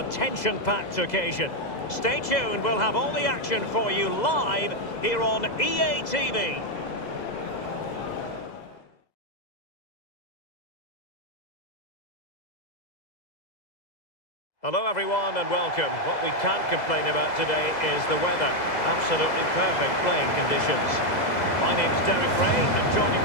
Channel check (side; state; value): right; late; 2.0 ms